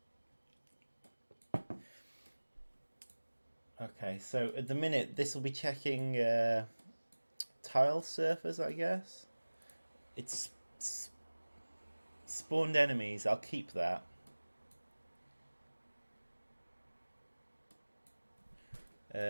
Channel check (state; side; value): inverted; both; correlation -1.00